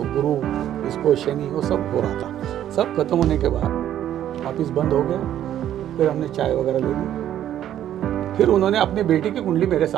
गुरु, इसको शनि, वो सब हो रहा था। सब खत्म होने के बाद ऑफिस बंद हो गया, फिर हमने चाय वगैरह ले ली। फिर उन्होंने अपनी बेटी की कुंडली मेरे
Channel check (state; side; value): quieter; left; 11.3 dB